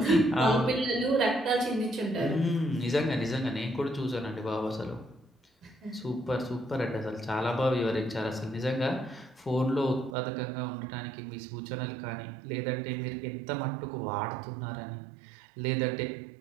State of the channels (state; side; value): drops out; left; at 10.2 s